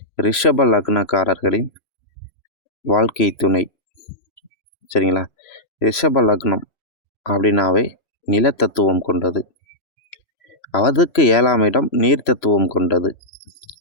ரிஷப லக்னக்காரர்களின் வாழ்க்கை துணை. சரிங்களா? ரிஷப லக்னம் அப்படின்னாவே நிலத்தத்துவம் கொண்டது. அதுக்கு 7ஆம் இடம் நீர் தத்துவம் கொண்டது.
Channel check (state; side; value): late; right; 3.0 ms